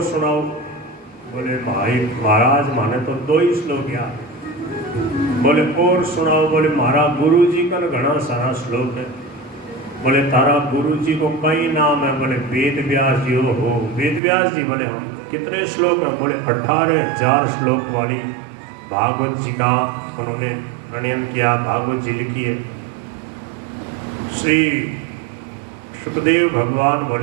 सुनाओ। बोले, भाई महाराज माने तो 2 ही श्लोक याद। बोले और सुनाओ। बोले, महाराज गुरु जी का घना सारा श्लोक है। बोले, तारा गुरु जी को कई नाम है। बोले, वेद व्यास जी हो। वेद व्यास जी? बोले हम। कितने श्लोक हैं? बोले 18,000 श्लोक वाली भागवत जी का उन्होंने प्रणयन किया, भागवत जी लिखी है। श्री सुखदेव भगवान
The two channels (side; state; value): left; drops out; at 14.2 s